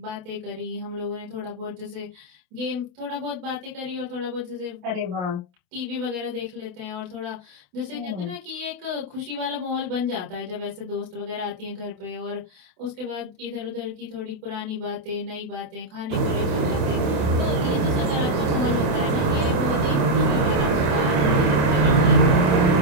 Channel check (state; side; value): late; left; 28 ms